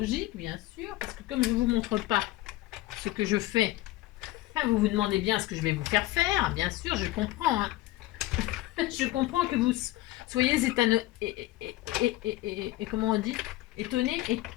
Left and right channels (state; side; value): quieter; right; 17.0 dB